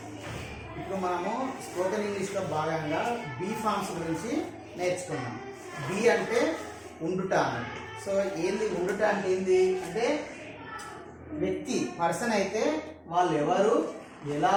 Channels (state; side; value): identical; both; correlation 1.00